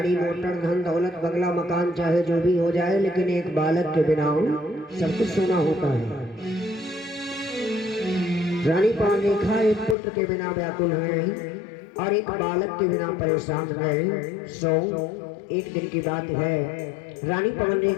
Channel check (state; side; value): drops out; right; at 10.0 s